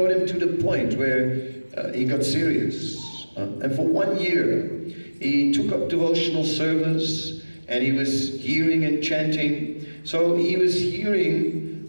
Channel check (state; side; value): inverted; both; correlation -1.00